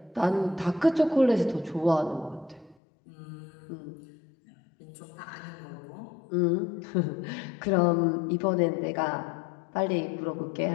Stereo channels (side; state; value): right; drops out; at 2.8 s